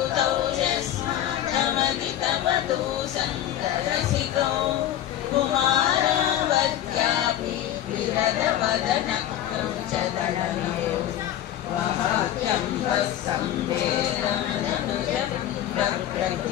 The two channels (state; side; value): quieter; right; 11.8 dB